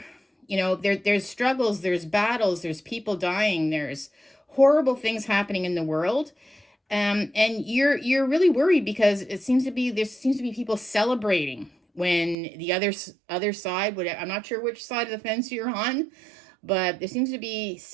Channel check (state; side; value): drops out; left; at 12.4 s